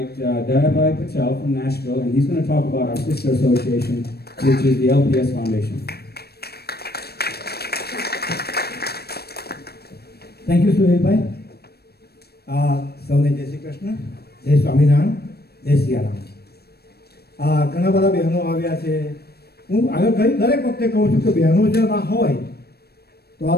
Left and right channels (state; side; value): late; right; 0.47 ms